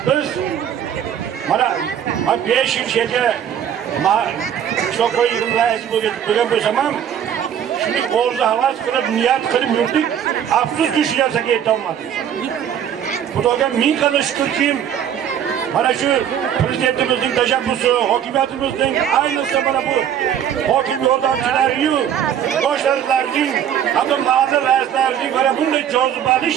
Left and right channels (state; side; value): quieter; left; 9.3 dB